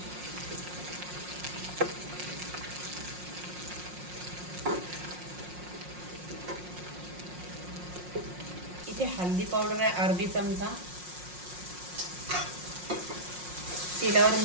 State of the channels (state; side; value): late; left; 5.6 ms